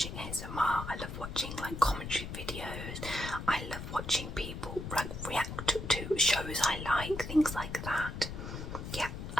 ASMR. I love watching like commentary videos. I love watching people like react to shows I like, things like that. Yeah,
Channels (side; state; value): left; noise; rumble, 7 dB below the sound